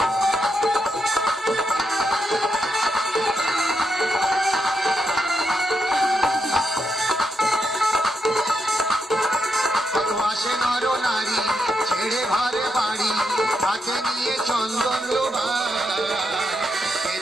ছেড়ে ঘরে বাড়ি, হাতে নিয়ে চন্দন লোভা,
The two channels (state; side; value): normal; both; correlation 0.82